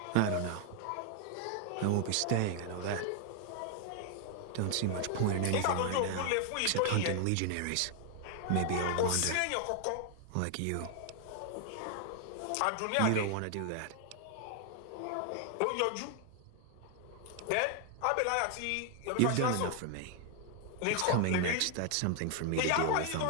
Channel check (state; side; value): different; both; correlation 0.00